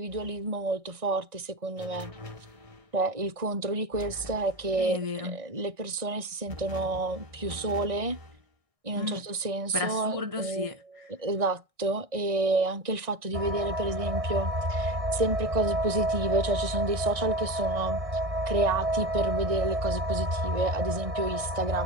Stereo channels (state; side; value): late; left; 1.6 ms